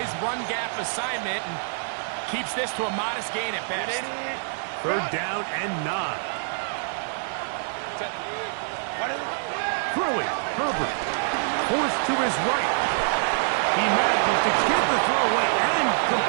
run gap assignment, and keeps this to a modest gain at best. 3rd down and 9. Throwing, Herbert. Forced to his right. He manages to get the throw away and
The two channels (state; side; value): silent; left; digital silence